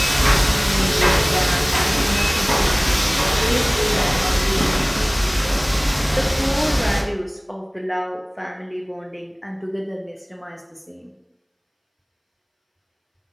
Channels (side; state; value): both; identical; correlation 1.00